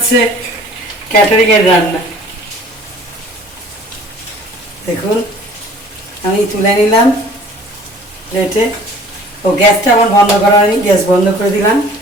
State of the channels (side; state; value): both; normal; correlation 0.50